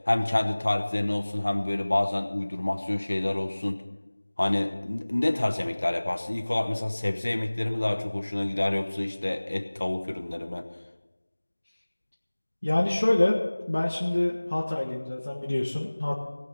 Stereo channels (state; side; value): inverted; both; correlation -1.00